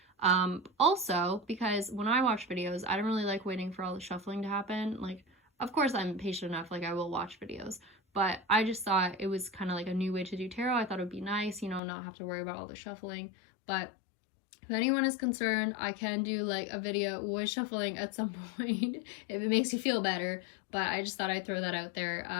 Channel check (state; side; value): drops out; right; at 11.8 s